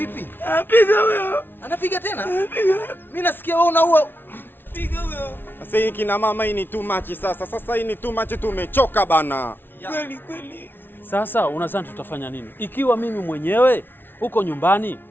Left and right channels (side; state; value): right; late; 0.10 ms